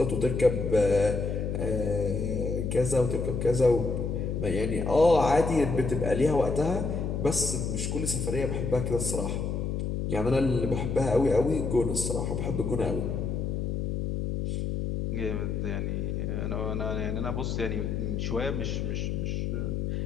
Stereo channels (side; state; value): left; noise; hum, 1 dB below the sound